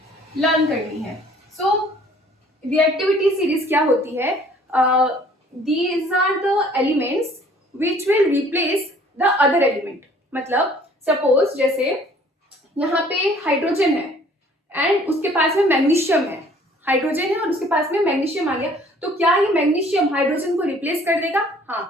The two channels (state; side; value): normal; both; correlation 0.56